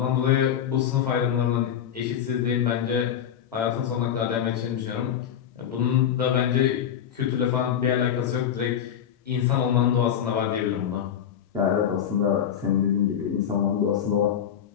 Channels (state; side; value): quieter; right; 9.3 dB